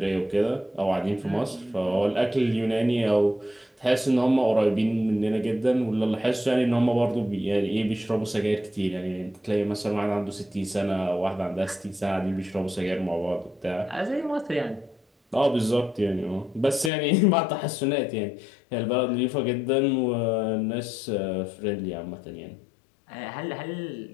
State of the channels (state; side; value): drops out; right; at 16.9 s